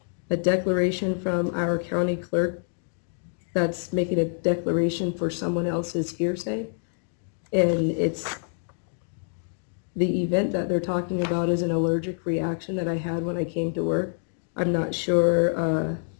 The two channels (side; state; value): right; silent; digital silence